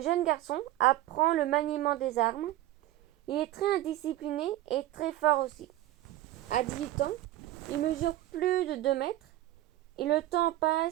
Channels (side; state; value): left; quieter; 15.2 dB